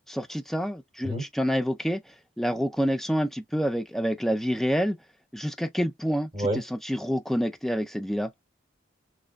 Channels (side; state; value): both; normal; correlation 0.94